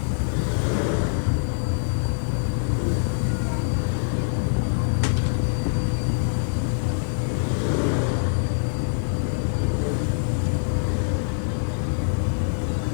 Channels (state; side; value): silent; right; 62 dB below the other